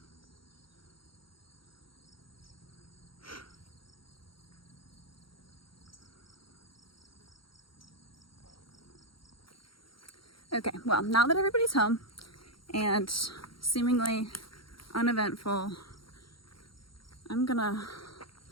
Okay, well, now that everybody's home and seemingly uneventful, I'm gonna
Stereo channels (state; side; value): late; right; 0.74 ms